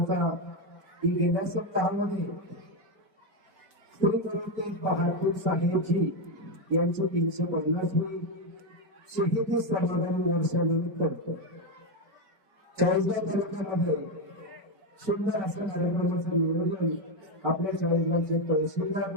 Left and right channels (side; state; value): left; late; 5.3 ms